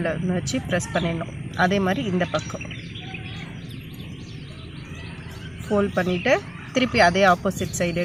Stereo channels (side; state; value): left; noise; rumble, 28 dB below the sound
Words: ஒன்று வச்சு ப்ரெஸ் பண்ணிடணும். அதே மாதிரி இந்த பக்கம் ஃபோல்ட் பண்ணிவிட்டு திருப்பி அதே ஆப்போசிட் சைடு